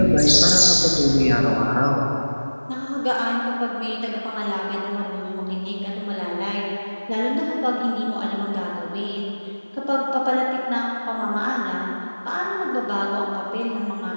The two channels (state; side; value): inverted; both; correlation -1.00